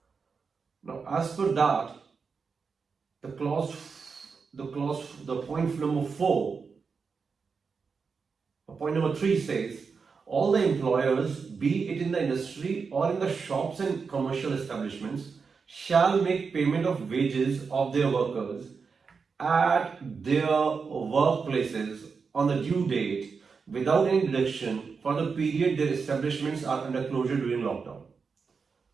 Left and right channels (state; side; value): quieter; left; 5.3 dB